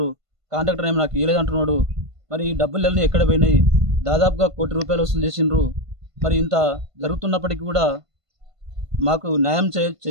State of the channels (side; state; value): left; late; 1.5 ms